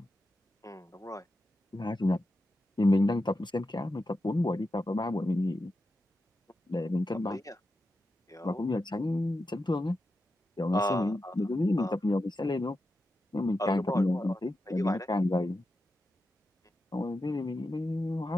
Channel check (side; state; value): both; normal; correlation 0.89